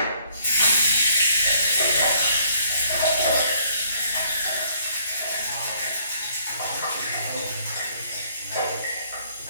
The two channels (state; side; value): inverted; both; correlation -0.63